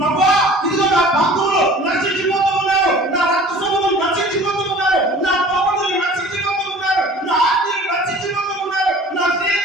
ఇదిగో నా బంధువులు నశించిపోతూ ఉన్నారు, నా రక్త సంబంధులు నశించిపోతూ ఉన్నారు, నా పౌరులు నశించిపోతూ ఉన్నారు, నా ఆత్మీయులు నశించిపోతూ ఉన్నారు, నా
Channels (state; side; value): normal; both; correlation 0.46